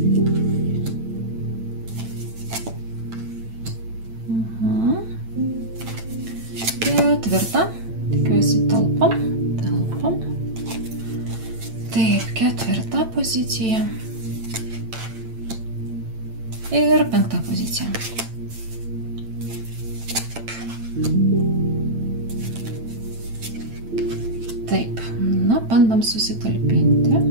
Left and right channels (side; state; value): left; late; 8.9 ms